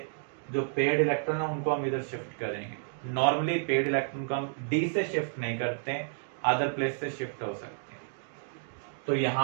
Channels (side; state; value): left; silent; digital silence